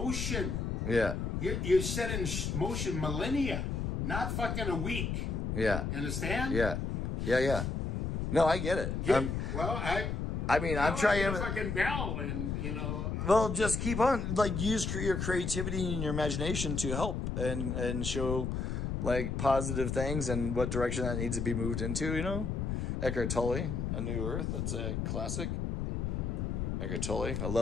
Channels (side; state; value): left; noise; rumble, 1 dB below the sound